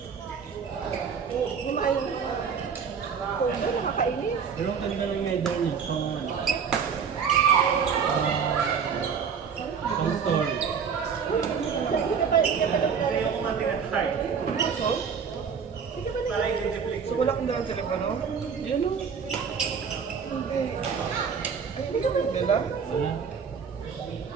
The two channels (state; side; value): quieter; left; 6.5 dB